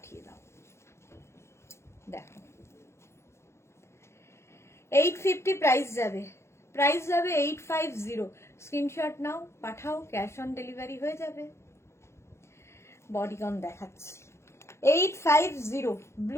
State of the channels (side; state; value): right; late; 0.13 ms